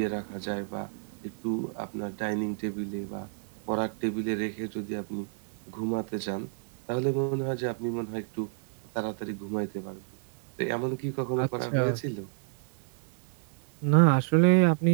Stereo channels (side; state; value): left; silent; 56 dB below the other